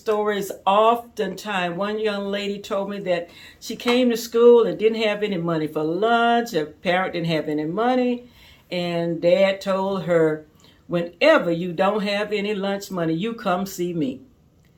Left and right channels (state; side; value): identical; both; correlation 1.00